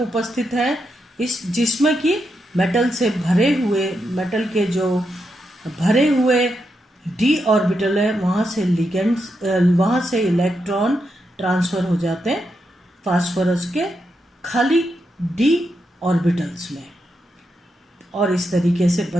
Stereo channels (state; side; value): normal; both; correlation 0.84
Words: हैं, इस जिसमें कि मेटल से भरे हुए, मेटल के जो भरे हुए डी ऑर्बिटल है वहाँ से लिगेंड्स, वहाँ से इलेक्ट्रॉन ट्रांसफर हो जाते हैं फास्फोरस के खाली डी ऑर्बिटल्स में और इस तरीके से